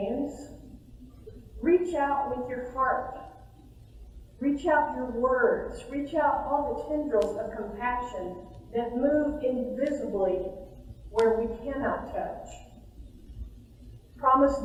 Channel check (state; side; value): identical; both; correlation 1.00